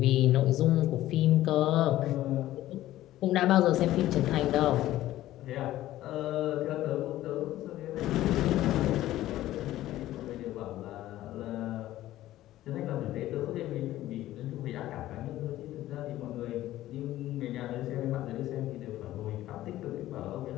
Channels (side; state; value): right; quieter; 14.7 dB